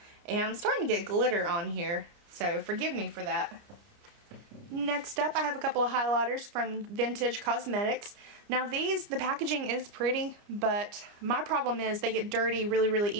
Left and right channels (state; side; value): late; left; 29 ms